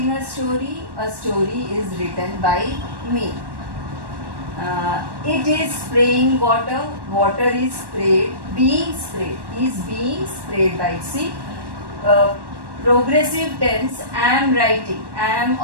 a story is written by me. It is spraying water, water is sprayed, is being sprayed by. See, progressive tense, am writing, am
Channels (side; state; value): left; late; 1.1 ms